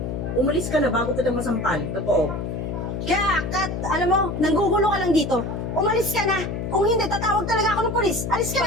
umalis ka na bago kita masampal. Totoo. Kaya, Kat, alam mo, nanggugulo ka lang dito. Umalis ka na. Kung hindi, tatawag talaga ako ng pulis. Alis ka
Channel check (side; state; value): left; noise; hum, 4 dB below the sound